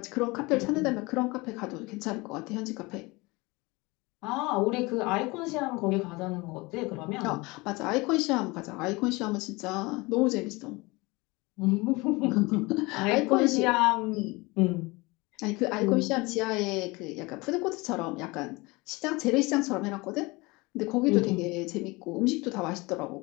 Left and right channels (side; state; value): right; quieter; 24.0 dB